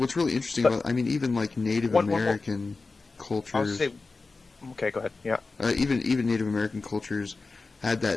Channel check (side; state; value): right; quieter; 3.9 dB